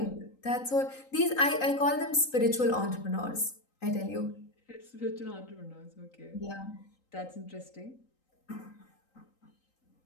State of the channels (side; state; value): right; late; 3.8 ms